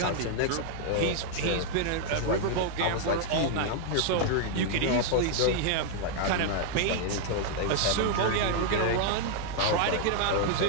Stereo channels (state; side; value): different; both; correlation 0.00